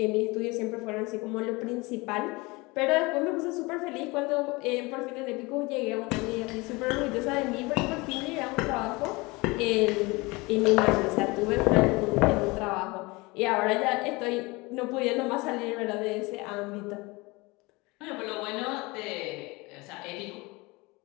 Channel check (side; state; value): right; quieter; 24.4 dB